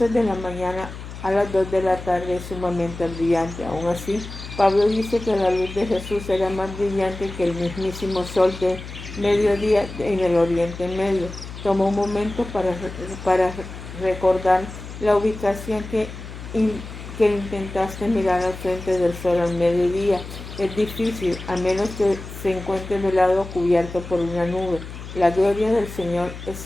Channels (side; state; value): left; noise; hum, 12 dB below the sound